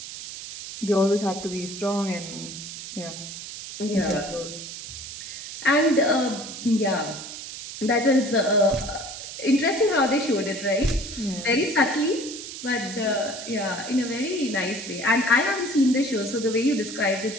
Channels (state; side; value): noise; right; hiss, 10 dB below the sound